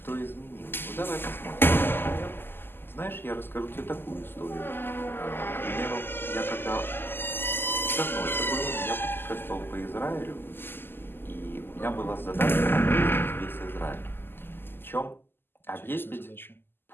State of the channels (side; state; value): right; late; 0.10 ms